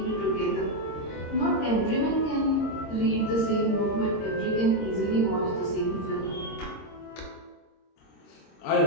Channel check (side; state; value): right; late; 26 ms